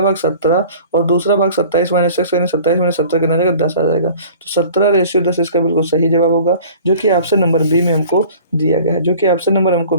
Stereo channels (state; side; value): inverted; both; correlation -0.46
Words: भाग 17 और दूसरा भाग 27 माइनस x, यानी 27 माइनस 17 कितना रहेगा, 10 आ जाएगा। तो 17:10 इसका बिल्कुल सही जवाब होगा, जो कि ऑप्शन नंबर बी में हमको दिया गया है, जो कि ऑप्शन नंबर हमको